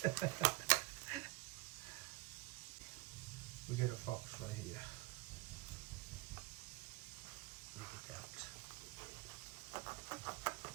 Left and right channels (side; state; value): left; quieter; 21.5 dB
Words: We got a fork right here. Look at that.